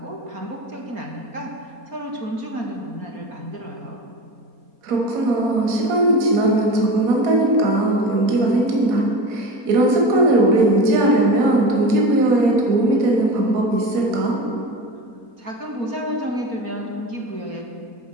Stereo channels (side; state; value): left; late; 4.3 ms